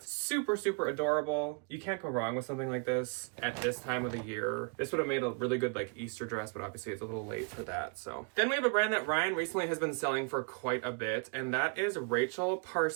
Super, super adorable. You can't go wrong with something like this at this time of the year. This would have made a really good like Easter dress, but obviously it's a little late for that. So then we have a brand that Ryan recently has been selling for quite a bit, and that is Rachel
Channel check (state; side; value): quieter; left; 35.8 dB